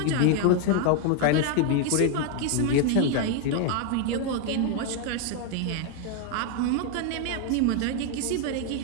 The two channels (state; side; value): different; both; correlation 0.00